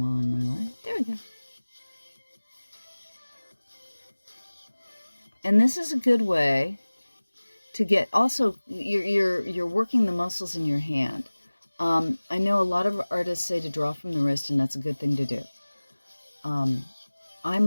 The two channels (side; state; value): both; inverted; correlation -1.00